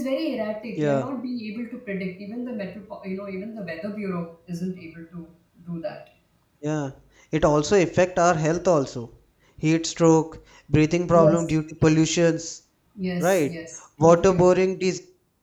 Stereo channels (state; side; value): identical; both; correlation 1.00